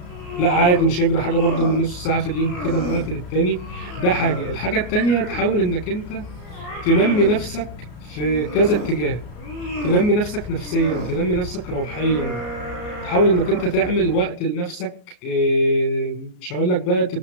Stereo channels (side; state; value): right; late; 33 ms